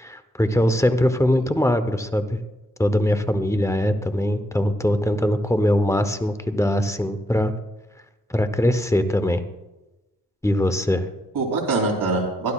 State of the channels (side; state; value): both; normal; correlation 0.80